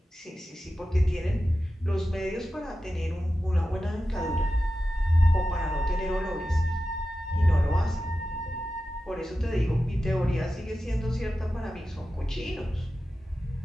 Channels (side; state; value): both; normal; correlation 0.93